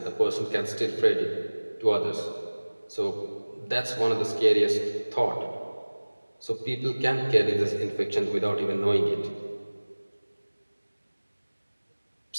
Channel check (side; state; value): both; inverted; correlation -1.00